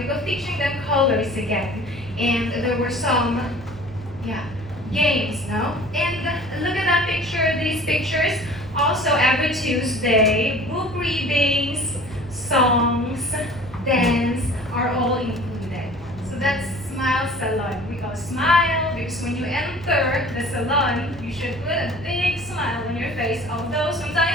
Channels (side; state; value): both; normal; correlation 0.46